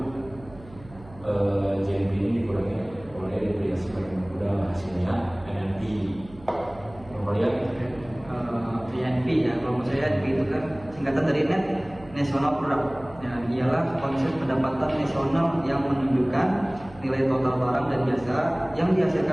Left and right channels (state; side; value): noise; right; hum, 20 dB below the sound